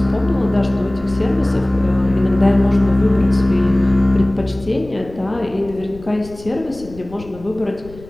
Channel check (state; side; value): noise; left; rumble, 18 dB below the sound